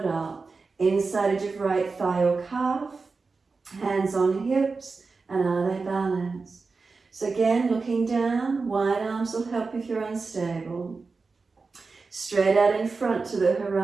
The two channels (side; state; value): left; quieter; 4.3 dB